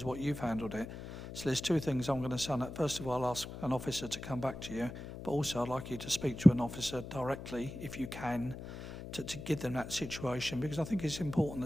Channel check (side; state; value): left; noise; hum, 10 dB below the sound